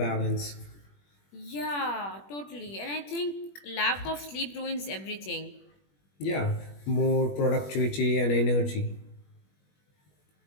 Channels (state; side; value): late; right; 21 ms